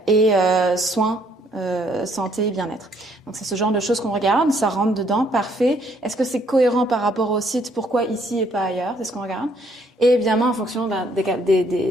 soins. Santé et bien-être. Donc c'est ce genre de choses qu'on regarde, ça rentre dedans, parfait. Est-ce que c'est cohérent par rapport au site, pourquoi ici et pas ailleurs, c'est ce qu'on regarde. Et évidemment en fonction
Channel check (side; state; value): both; normal; correlation 0.67